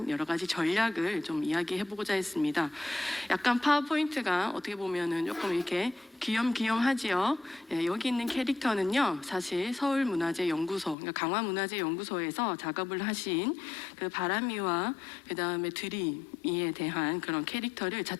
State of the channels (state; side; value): drops out; right; at 11.0 s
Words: 여러 가지 전략을 좀 이야기해보고자 했습니다. 약간 파워포인트가 어떻게 보면은 조금 이렇게 귀염귀염하지요. 예, 여기 있는 캐릭터는요, 사실 서울문화재연구소, 그러니까 강화문화재연구소에서 작업을 하신 그 바람이와 그 다음에 드림이에 대한 그런 캐릭터를